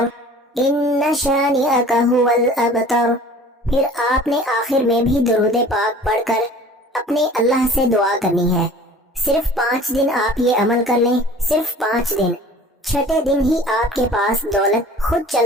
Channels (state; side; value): normal; both; correlation 0.46